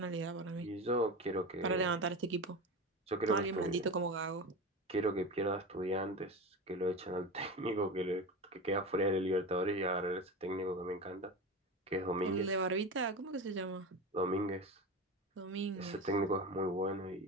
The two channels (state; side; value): normal; both; correlation 0.25